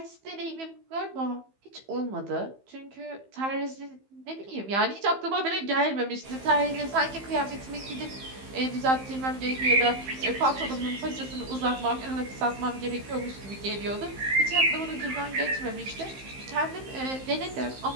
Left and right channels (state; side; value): late; left; 15 ms